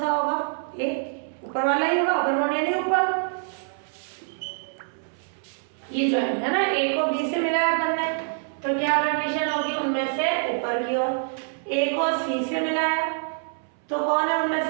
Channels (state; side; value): silent; left; 61 dB below the other